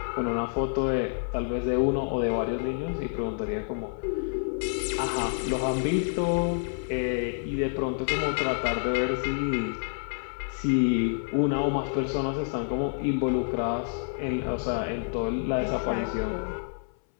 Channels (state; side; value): silent; right; 59 dB below the other